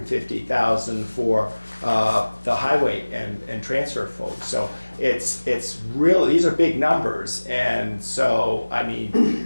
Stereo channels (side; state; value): both; inverted; correlation -1.00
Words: for the highway and transfer folks. So it's really, these are big numbers. And so, I